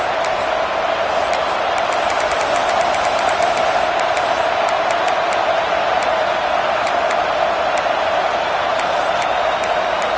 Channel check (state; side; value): identical; both; correlation 1.00